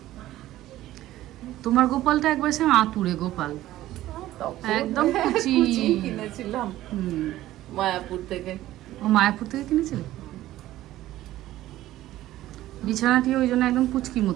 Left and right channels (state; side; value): quieter; left; 14.9 dB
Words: তোমার গোপালটা একবার সে আতুরে গোপাল, একদম কুচি কিনেছিলাম মায়াপুর থেকে। ও মায়াপুর থেকে কিনেছিলে? বিছানাটি ওই জন্য একদম পুচকি